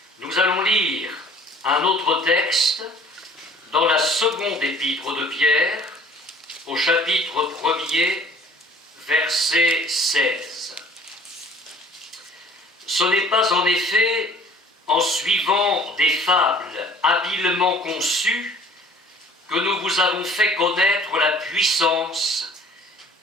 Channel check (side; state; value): both; normal; correlation 0.51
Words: Nous allons lire un autre texte dans la seconde épître de Pierre, au chapitre 1er, verset 16. « Ce n'est pas en effet en suivant des fables habilement conçues que nous vous avons fait connaître la puissance